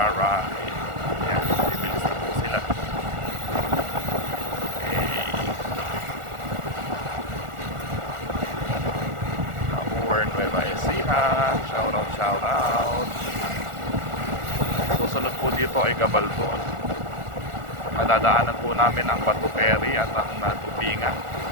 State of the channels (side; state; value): left; late; 1.4 ms